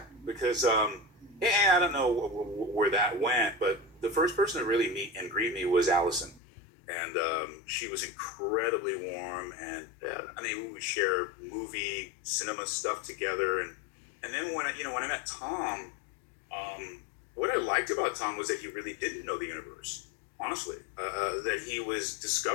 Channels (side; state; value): right; drops out; at 6.4 s